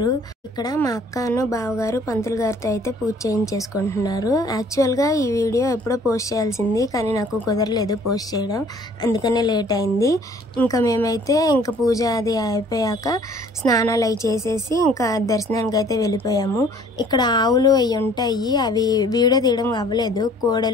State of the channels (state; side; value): normal; both; correlation 0.55